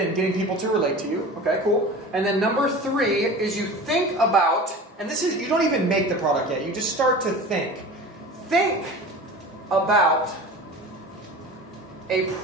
getting people to relate to you. Okay, cool. And then number 3 is you think about, and this is, you don't even make the product yet, you just start to think. Think about a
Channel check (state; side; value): normal; both; correlation 0.36